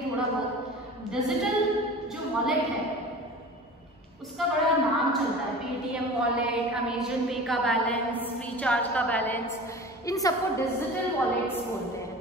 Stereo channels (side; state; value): both; normal; correlation 0.37